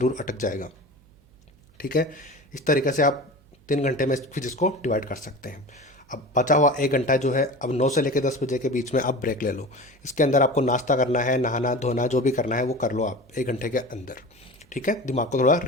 अटक जाएगा। ठीक है। इस तरीके से आप 3 घंटे में फिजिक्स को डिवाइड कर सकते हैं। अब बचा हुआ 1 घंटा जो है, अब 9 से लेकर 10 बजे के बीच में आप ब्रेक ले लो। इसके अंदर आपको नाश्ता करना है, नहाना धोना जो भी करना है वो कर लो आप 1 घंटे के अंदर। ठीक है। दिमाग को थोड़ा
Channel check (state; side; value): noise; right; hum, 29 dB below the sound